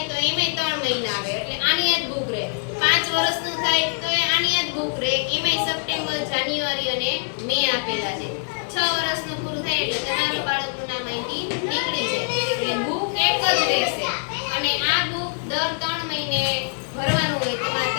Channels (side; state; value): right; silent; digital silence